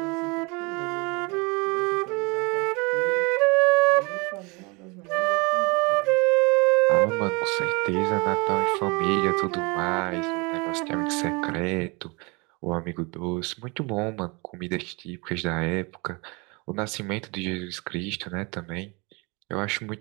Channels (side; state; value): left; quieter; 28.3 dB